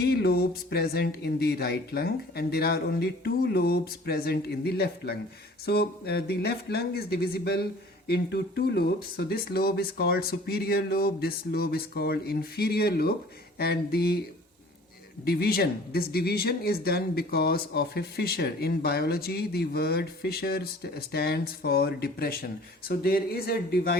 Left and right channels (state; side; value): normal; both; correlation 0.49